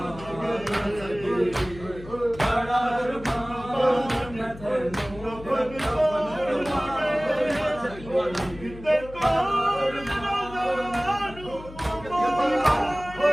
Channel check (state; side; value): noise; left; hum, 16 dB below the sound